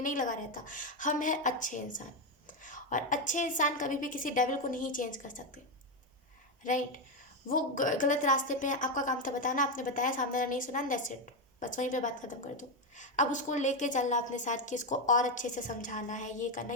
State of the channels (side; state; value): both; normal; correlation 0.08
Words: नहीं लगा रहता। हम हैं अच्छे इंसान, और अच्छे इंसान कभी भी किसी डेविल को नहीं चेंज कर सकते, राइट। वो गलत रास्ते पे है, आपका काम था बताना, आपने बताया, सामने वाला नहीं सुना, दैट्स इट, बस वहीं पे बात खत्म कर दो। अब उसको लेके चलना अपने साथ कि इसको और अच्छे से समझाना है, ये करना,